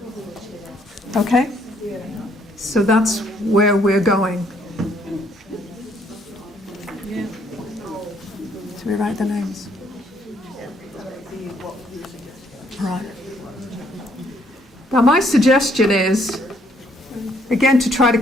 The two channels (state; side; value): normal; both; correlation 0.68